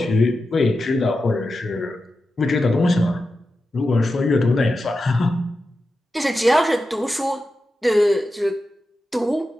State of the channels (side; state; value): both; normal; correlation 0.91